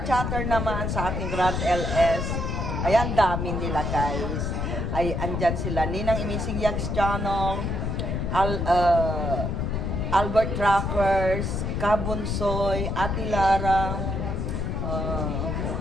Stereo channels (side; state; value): left; noise; rumble, 1 dB below the sound